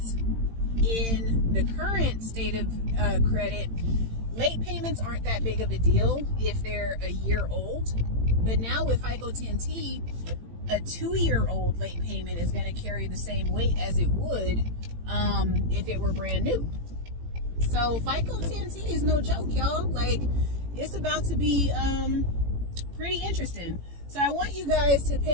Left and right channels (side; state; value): left; late; 18 ms